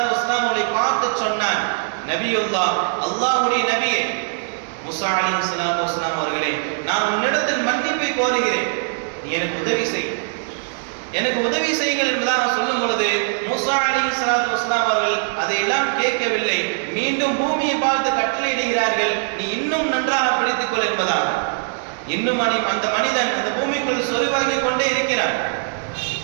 வஸ்ஸலாம் அவர்களை பார்த்து சொன்னான், நபியுல்லாஹ், அல்லாஹ்வுடைய நபியே, மூசா அலைஹிஸ்ஸலாத்து வஸ்ஸலாம் அவர்களே, நான் உன்னிடத்தில் மன்னிப்பை கோருகிறேன், நீ எனக்கு உதவி செய், எனக்கு உதவி செய்யுங்கள் என்பதாக சொல்லும் பொழுது மூசா அலைஹிஸ்ஸலாத்து வஸ்ஸலாம் அவர்கள் அதையெல்லாம் கேட்கவில்லை. மீண்டும் பூமியை பார்த்து கட்டளையிடுகிறார்கள், நீ இன்னும் நன்றாக பிடித்துக் கொள் என்பதாக. இன்னும் அந்த மனிதன் அந்த பூமிக்குள் சொறிவாகி கொண்டே இருக்கிறான்.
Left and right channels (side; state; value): left; silent; digital silence